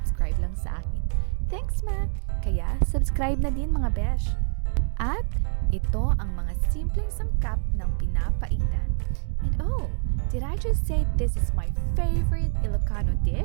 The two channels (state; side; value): silent; left; 57 dB below the other